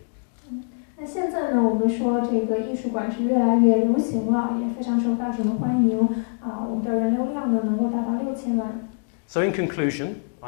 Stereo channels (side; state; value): right; silent; digital silence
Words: 那现在呢，我们说这个艺术馆是越来越流行了，也非常受大众的欢迎啊。我们的人流量呢能够达到6000万。So in conclusion,